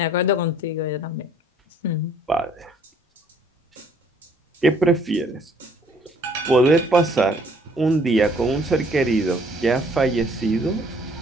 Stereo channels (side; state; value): both; normal; correlation 0.60